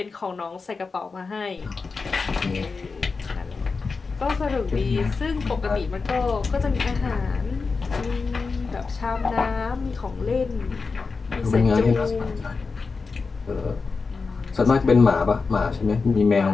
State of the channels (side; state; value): right; quieter; 4.5 dB